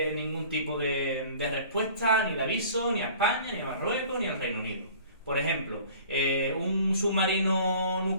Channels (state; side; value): inverted; both; correlation -0.48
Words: ningún tipo de respuesta, ni de aviso, ni a España, ni a Marruecos, ni al Reino Unido. Por ejemplo, un submarino